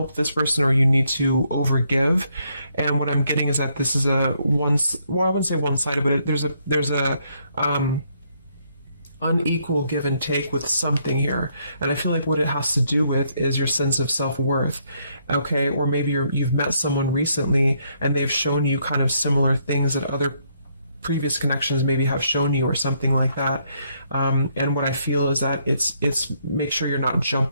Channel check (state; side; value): inverted; both; correlation -0.72